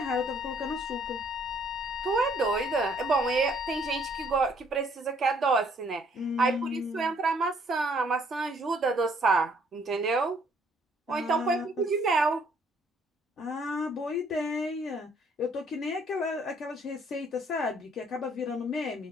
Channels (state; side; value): normal; both; correlation 0.64